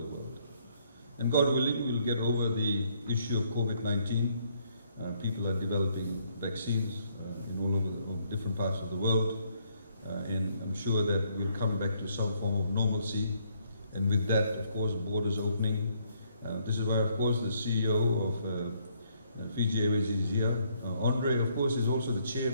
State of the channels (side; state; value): both; inverted; correlation -0.69